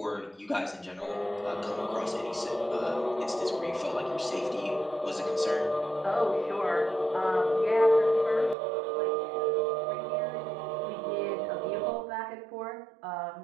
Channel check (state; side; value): drops out; left; at 8.6 s